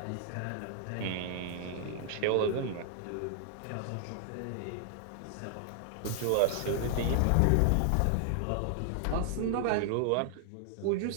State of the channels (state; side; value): different; both; correlation 0.00